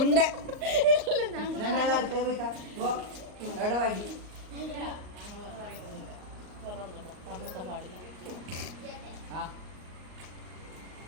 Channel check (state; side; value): late; left; 38 ms